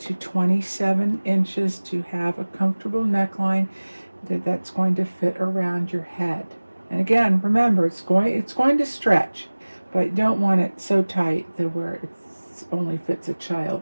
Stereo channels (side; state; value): both; inverted; correlation -1.00